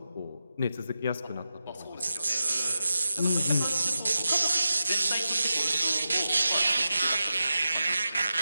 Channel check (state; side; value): inverted; both; correlation -0.91